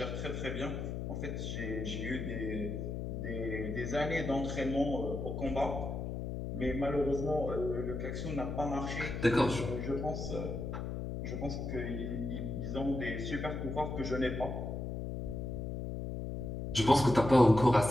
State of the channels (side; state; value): left; noise; hum, 4 dB below the sound